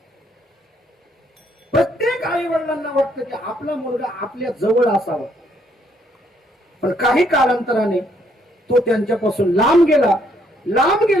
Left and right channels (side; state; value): both; normal; correlation 0.70